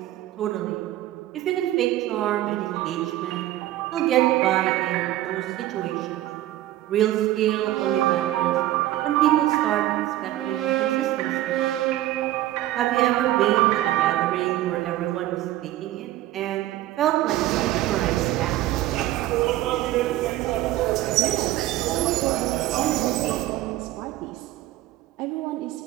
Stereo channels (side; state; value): left; quieter; 14.9 dB